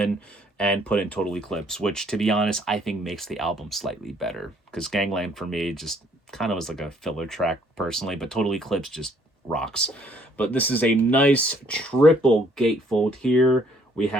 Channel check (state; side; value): normal; both; correlation 0.64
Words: and put in Total Eclipse, which, to be honest, I think makes the album slightly better, because Gangland, for me, just kind of was like a filler track, personally, but Total Eclipse just rocks. But this is a nice triple gatefold here. We